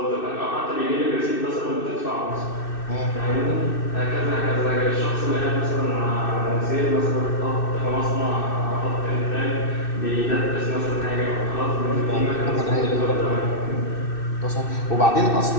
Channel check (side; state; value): right; late; 2.6 ms